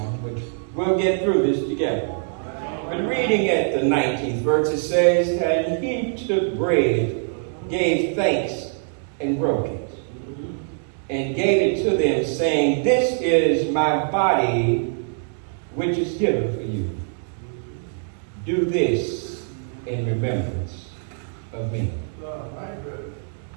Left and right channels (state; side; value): silent; left; digital silence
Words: But we'll get through this together. But reading at the 19th verse, it says, "And he took bread, gave thanks, and broke it, and gave it to them, saying, This is my body, which is given for you. Do this in remembrance of me."